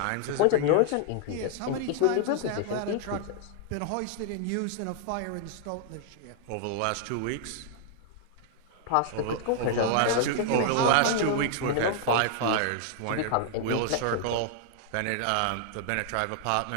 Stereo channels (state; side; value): different; both; correlation 0.00